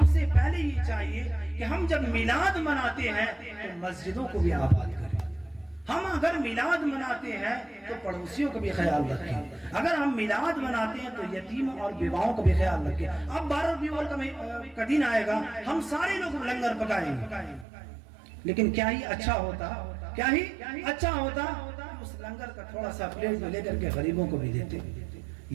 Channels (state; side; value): drops out; left; at 17.7 s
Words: سے پہلے یہ چاہیے کہ ہم جب میلاد مناتے ہیں تو مسجدوں کو بھی آباد کریں. ہم اگر میلاد مناتے ہیں تو پڑوسیوں کا بھی خیال رکھیں. اگر ہم میلاد مناتے ہیں تو یتیموں اور بیواؤں کا بھی خیال رکھیں. اب 12 ربیع الاول کا دن آئے گا, ہم سارے لوگ لنگر پکائیں گے, لیکن کیا ہی اچھا ہوتا اس لنگر کا تھوڑا سا پلیٹ میں لے کر کے غریبوں کو بھی دیتے,